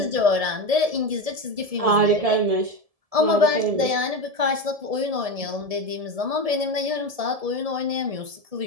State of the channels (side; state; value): left; late; 1.7 ms